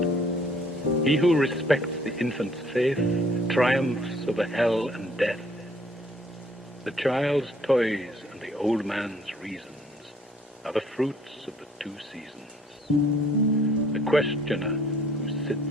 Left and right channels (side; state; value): both; normal; correlation 0.60